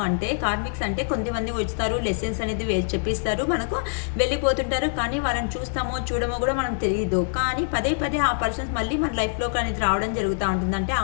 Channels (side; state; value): right; silent; digital silence